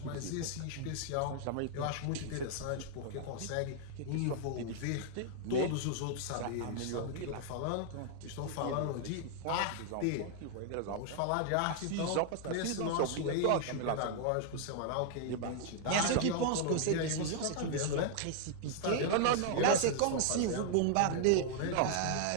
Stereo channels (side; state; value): both; different; correlation 0.00